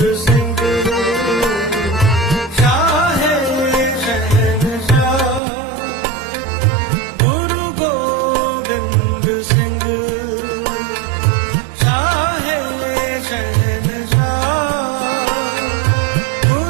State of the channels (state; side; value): drops out; left; at 5.4 s